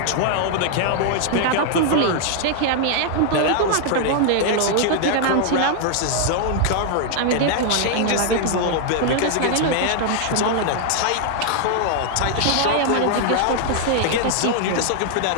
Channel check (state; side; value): different; both; correlation 0.00